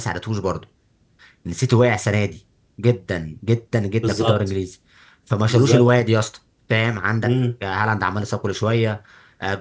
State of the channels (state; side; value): identical; both; correlation 1.00